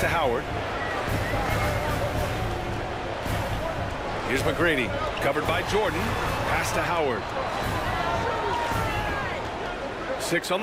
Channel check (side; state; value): both; identical; correlation 1.00